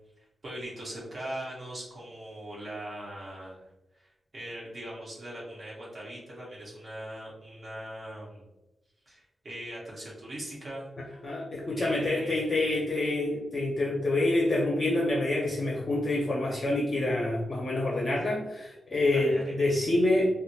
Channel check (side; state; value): both; normal; correlation 0.86